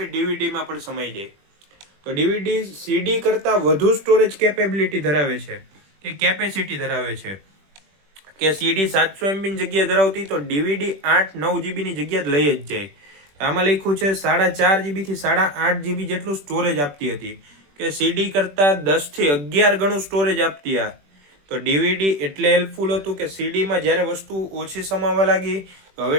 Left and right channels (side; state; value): left; late; 21 ms